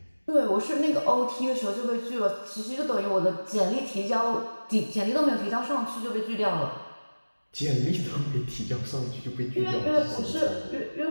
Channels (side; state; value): both; inverted; correlation -1.00